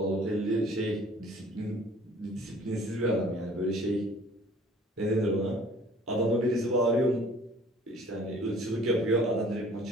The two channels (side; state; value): both; normal; correlation 0.52